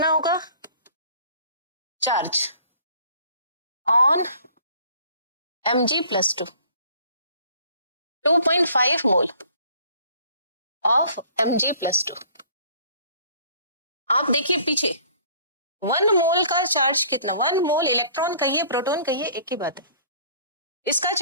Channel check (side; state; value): both; inverted; correlation -0.54